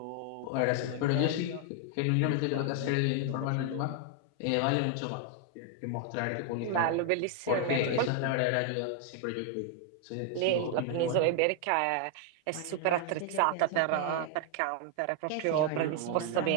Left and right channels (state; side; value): different; both; correlation 0.00